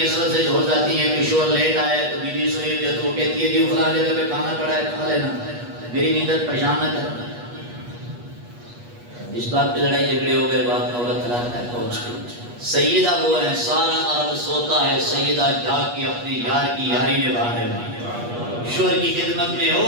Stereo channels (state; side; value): late; left; 8.3 ms